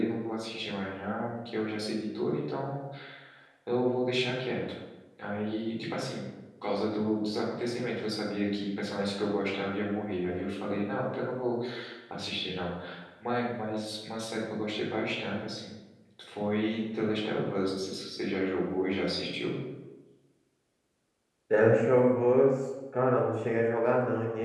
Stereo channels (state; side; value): identical; both; correlation 1.00